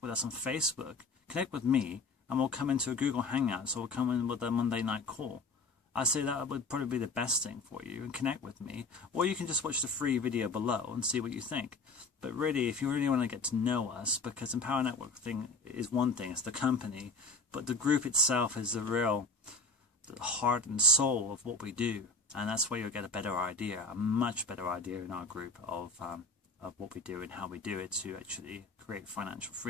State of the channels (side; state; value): right; quieter; 3.4 dB